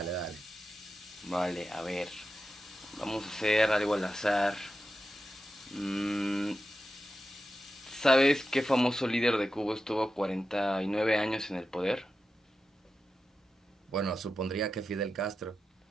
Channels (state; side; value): normal; both; correlation 0.91